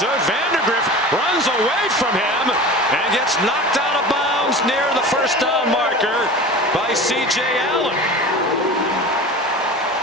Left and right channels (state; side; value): normal; both; correlation 0.35